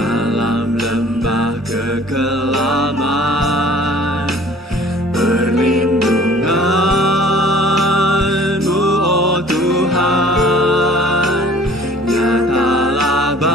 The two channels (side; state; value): both; normal; correlation 0.51